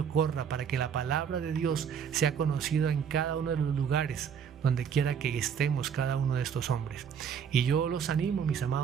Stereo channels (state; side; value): quieter; left; 7.5 dB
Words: corra, para que la palabra de Dios sea conocida en cada uno de los lugares donde quiera que estemos cada uno de estos hombres. Y yo los animo, mis